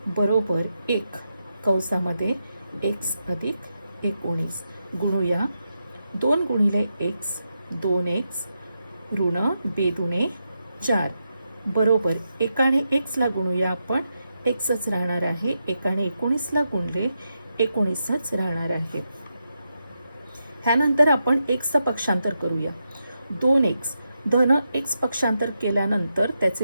बरोबर 1 कंसामध्ये x अधिक 19 गुणूया. 2 गुणिले x 2x ऋण 2 दुणे 4 बरोबर एकाने x ला गुणूया आपण, xच राहणार आहे. एकाने 19 ला गुणले 19च राहणार आहे. ह्यानंतर आपण xचं पक्षांतर करूया. 2x धन x पक्षांतर केल्यानंतर त्याचे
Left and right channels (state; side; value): inverted; both; correlation -0.86